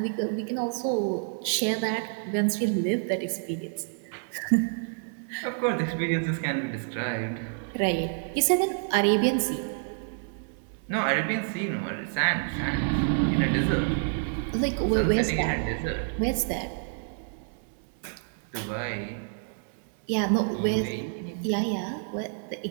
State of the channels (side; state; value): left; silent; digital silence